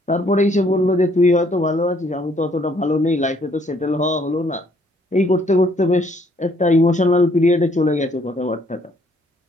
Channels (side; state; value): both; normal; correlation 0.65